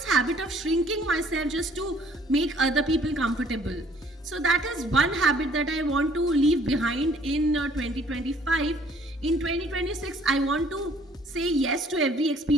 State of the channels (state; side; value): normal; both; correlation 0.60